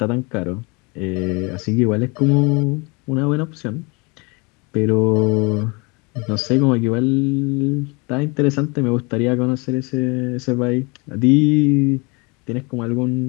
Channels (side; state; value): right; quieter; 29.1 dB